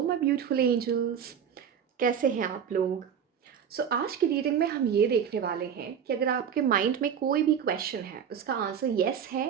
my beautiful angels, कैसे हैं आप लोग। आज की रीडिंग में हम ये देखने वाले हैं कि अगर आपके माइंड में कोई भी क्वेश्चन है, उसका आंसर येस है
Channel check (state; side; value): quieter; left; 8.1 dB